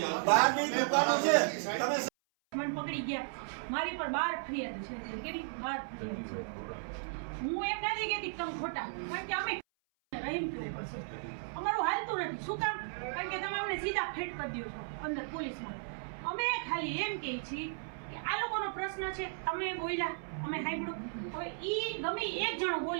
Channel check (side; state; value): left; silent; 54 dB below the other